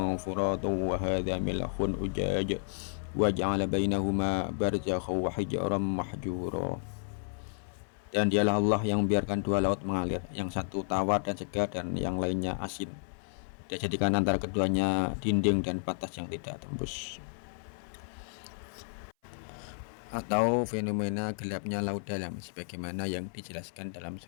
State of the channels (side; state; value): right; silent; 57 dB below the other